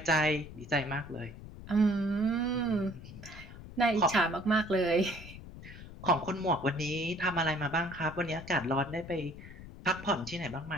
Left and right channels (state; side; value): noise; left; rumble, 14 dB below the sound